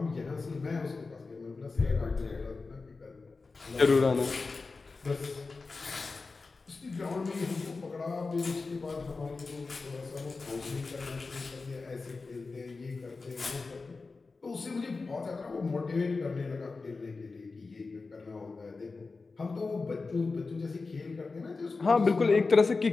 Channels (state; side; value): quieter; right; 4.0 dB